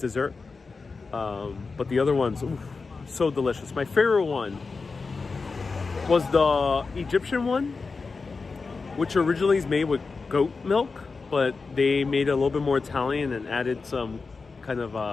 But the other ones, oof, so delicious. My favorite one was the Egyptian one, which originally is made with goat milk, but they made it a little bit more Italian and added some kind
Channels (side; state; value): right; quieter; 4.4 dB